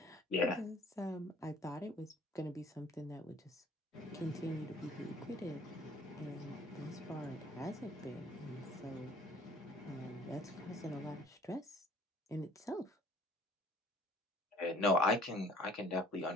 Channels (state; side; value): normal; both; correlation 0.53